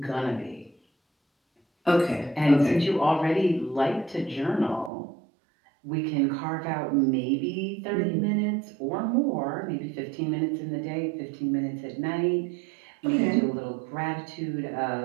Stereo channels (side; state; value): left; drops out; at 4.9 s